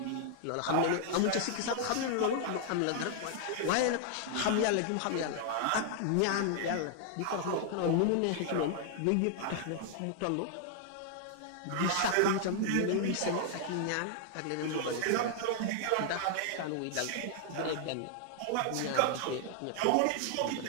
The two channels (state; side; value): different; both; correlation 0.00